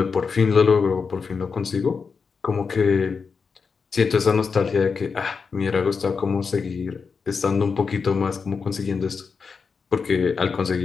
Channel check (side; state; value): right; quieter; 5.4 dB